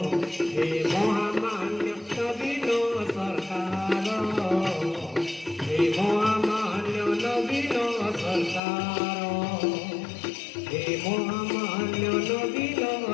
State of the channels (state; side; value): drops out; right; at 8.6 s